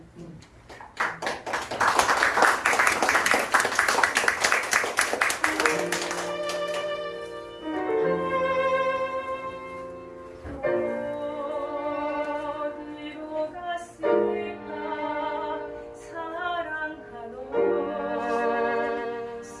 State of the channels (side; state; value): both; identical; correlation 1.00